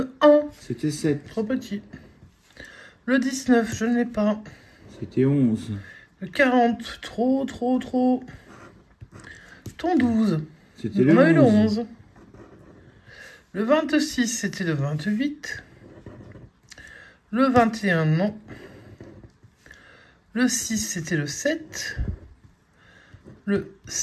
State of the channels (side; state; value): both; identical; correlation 1.00